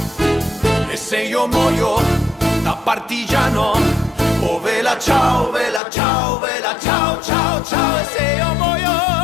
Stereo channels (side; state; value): right; drops out; at 5.8 s